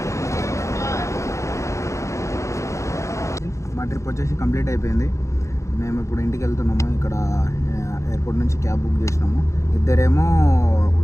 మా ట్రిప్ వచ్చేసి కంప్లీట్ అయిపోయింది. మేము ఇప్పుడు ఇంటికి వెళ్తున్నాము. ఇక్కడ ఎయిర్పోర్ట్ నుంచి క్యాబ్ బుక్ చేసినాము. ఇద్దరేమో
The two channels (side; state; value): right; late; 0.14 ms